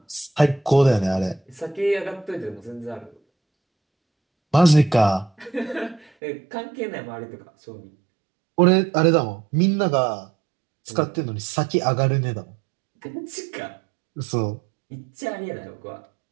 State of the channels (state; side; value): drops out; left; at 6.1 s